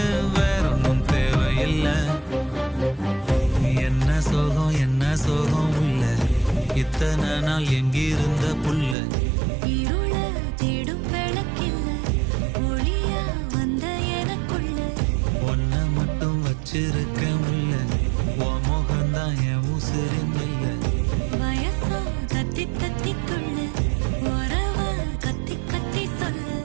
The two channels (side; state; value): left; drops out; at 9.0 s